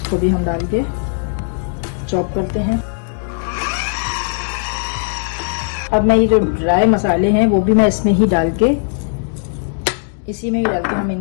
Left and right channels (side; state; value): right; silent; digital silence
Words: इसको भी हम डाल के चॉप करते हैं। अब मैं ये जो ड्राई मसाले हैं वो भी मैं इसमें ही डाल के, इसी में ही डाल के हम